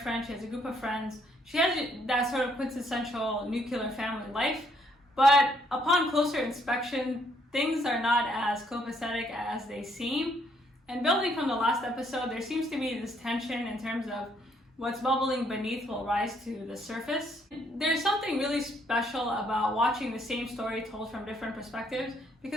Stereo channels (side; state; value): both; normal; correlation 0.69